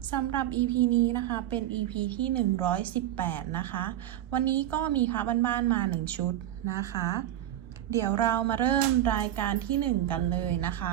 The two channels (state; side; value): quieter; left; 12.6 dB